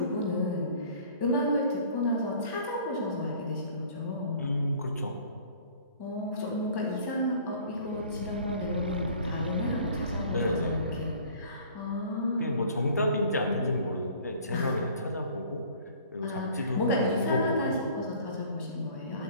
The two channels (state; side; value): inverted; both; correlation -0.51